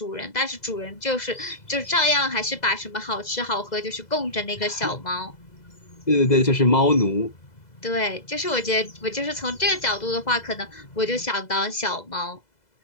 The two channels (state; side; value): late; right; 2.0 ms